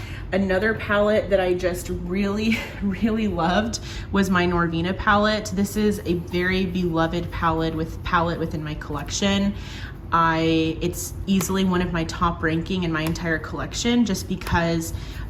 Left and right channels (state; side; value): identical; both; correlation 1.00